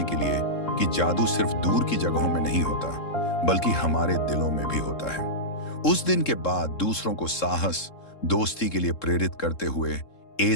के लिए कि जादू सिर्फ दूर की जगहों में नहीं होता, बल्कि हमारे दिलों में भी होता है। उस दिन के बाद दूसरों को साहस, दोस्ती के लिए प्रेरित करते हुए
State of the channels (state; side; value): late; right; 3.7 ms